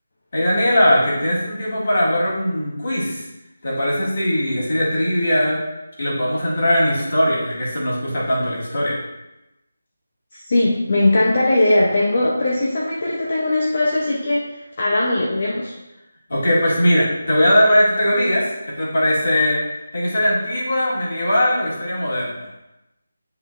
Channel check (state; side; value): inverted; both; correlation -0.93